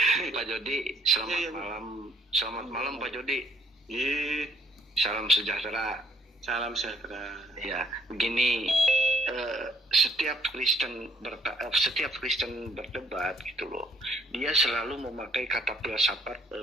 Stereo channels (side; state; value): both; normal; correlation 0.64